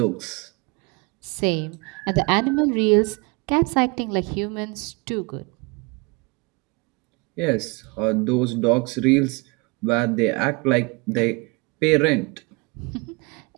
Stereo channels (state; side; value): quieter; left; 28.8 dB